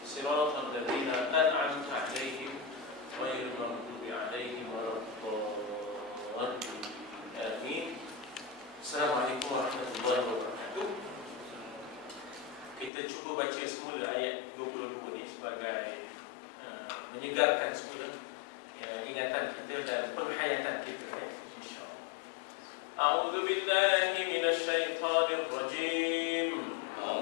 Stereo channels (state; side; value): drops out; right; at 12.9 s